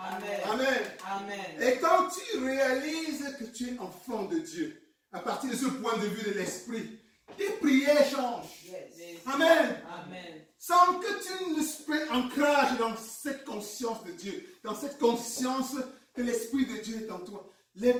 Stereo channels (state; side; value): identical; both; correlation 1.00